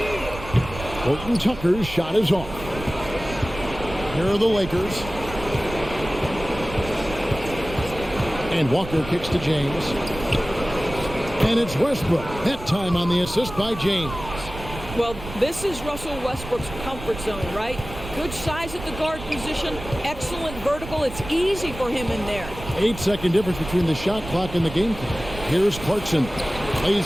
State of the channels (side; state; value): right; noise; rumble, 11 dB below the sound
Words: HORTON-TUCKER's shot is off. Here are the Lakers. And Walker kicks to James. And it's Westbrook. That time on the assist by James. Well, this is Russell Westbrook's comfort zone, right? Good size at the guard position, excellent vertical. It's easy for him in there. 8-second difference between the shot clock and the game clock. Here's Clarkson.